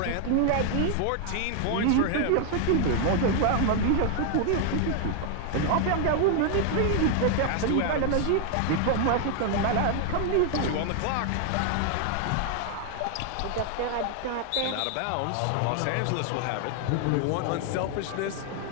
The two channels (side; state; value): both; different; correlation 0.00